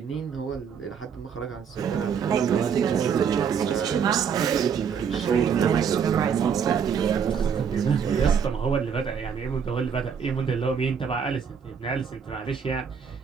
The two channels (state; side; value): quieter; left; 7.0 dB